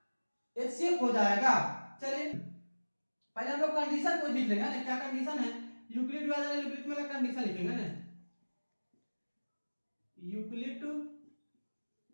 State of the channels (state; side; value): inverted; both; correlation -1.00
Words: एचसीएफ हो जाएगा। चलिए पहले हम लोग कंडीशन को लिख लेंगे ना। क्या कंडीशन है? यूक्लिड विभाजन एलोगरिथम में कंडीशन लिखेंगे ना। यूक्लिड